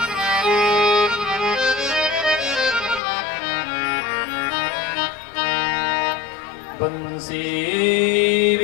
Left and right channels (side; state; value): right; drops out; at 3.0 s